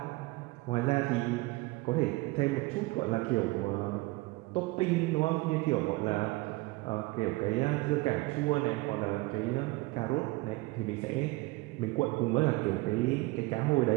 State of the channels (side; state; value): left; quieter; 22.6 dB